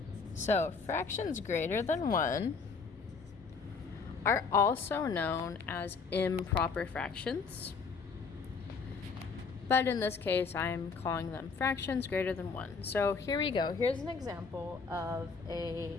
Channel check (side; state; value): right; quieter; 5.0 dB